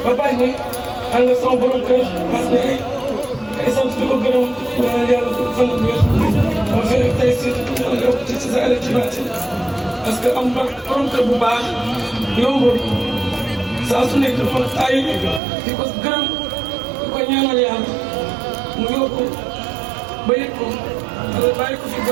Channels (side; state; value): left; drops out; at 15.4 s